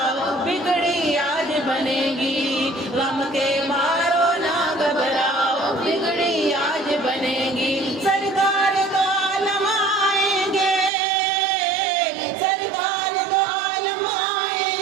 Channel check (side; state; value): left; drops out; at 10.9 s